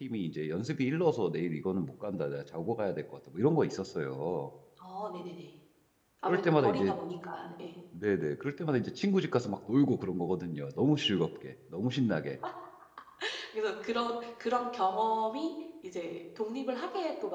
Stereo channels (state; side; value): identical; both; correlation 1.00